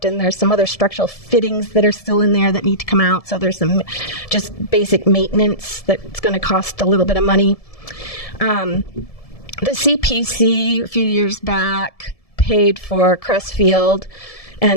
and there's some other structural fittings that are still in there that need to come out, so there's some just basic maintenance that's going to cost a little bit of money. The CPC, a few years back, paid for Crestfield,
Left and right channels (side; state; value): right; late; 1.7 ms